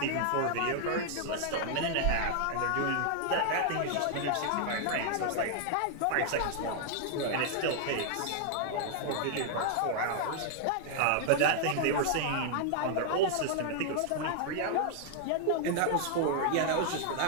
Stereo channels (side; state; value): both; different; correlation -0.01